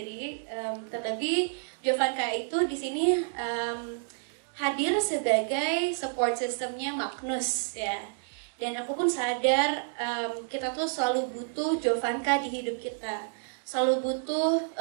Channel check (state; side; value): silent; left; digital silence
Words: Terlebih Jovanka itu di sini hadir sebagai support systemnya Magnus ya. Dan aku pun sadar kita tuh selalu butuh Jovanka di hidup kita. Selalu butuh